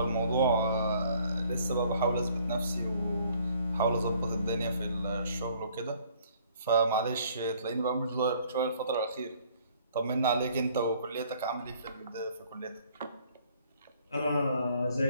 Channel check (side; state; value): both; inverted; correlation -0.61